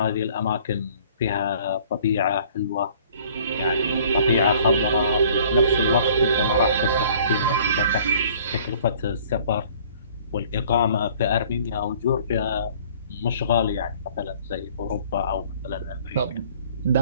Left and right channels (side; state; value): both; inverted; correlation -0.54